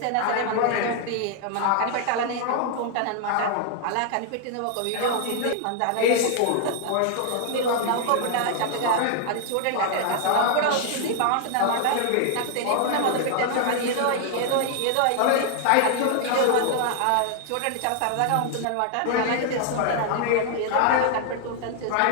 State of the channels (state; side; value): different; both; correlation 0.00